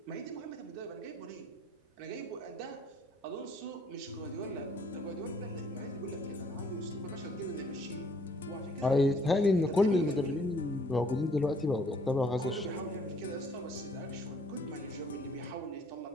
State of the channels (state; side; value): normal; both; correlation 0.62